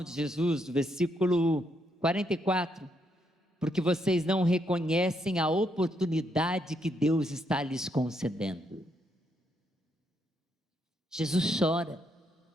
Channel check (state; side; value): normal; both; correlation 0.76